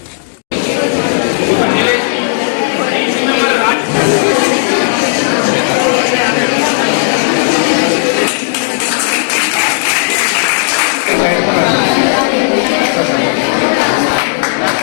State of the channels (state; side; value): silent; right; digital silence